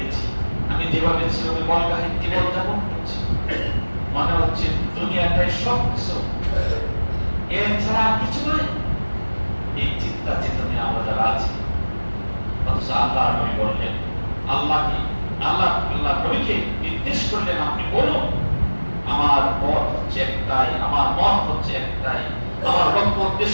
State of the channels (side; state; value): both; inverted; correlation -1.00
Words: আমি যেভাবে সেভাবে বলগাহীন জীবন যাপন করছি, মনে হচ্ছে দুনিয়াটাই সব কিছু, এর ছাড়া কিছু নয়। এই চিন্তা চেতনে আমরা যারা আছি, অথচ আল্লাহ নবী বললেন, আল্লাহকে আল্লাহ নবীকে নির্দেশ করলেন, আপনি বলুন আমার পথ হচ্ছে একটাই, আমার মত হচ্ছে একটাই, আমার লক্ষ্য